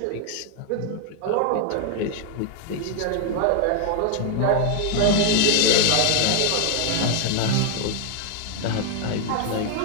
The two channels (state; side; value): different; both; correlation 0.00